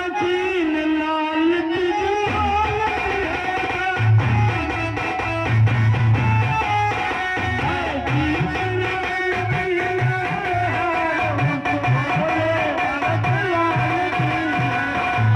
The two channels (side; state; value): both; identical; correlation 1.00